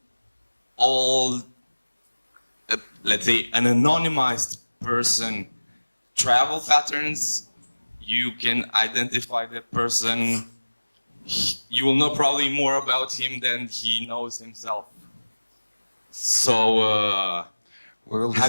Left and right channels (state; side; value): inverted; both; correlation -1.00